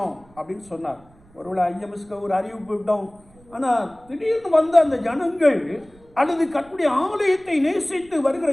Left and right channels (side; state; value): right; noise; rumble, 28 dB below the sound